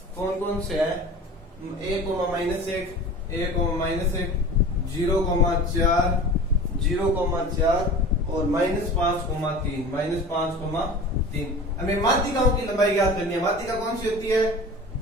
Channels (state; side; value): normal; both; correlation 0.37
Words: कौन कौन से है, 1, -1, 1, -1, 0,4, 0,4 और -5,3, -5,3। हमें माध्यिकाओं की लंबाई ज्ञात करनी है। माध्यिका कौन सी होती है,